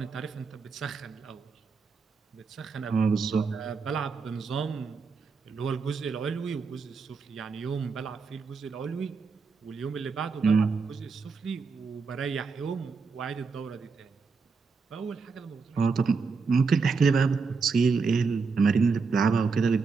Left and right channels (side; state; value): left; quieter; 4.9 dB